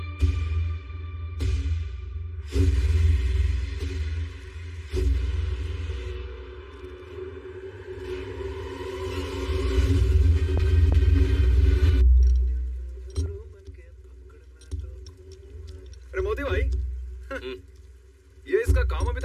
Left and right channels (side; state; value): both; identical; correlation 1.00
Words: अरे मोदी भाई, ये इसका काम अभी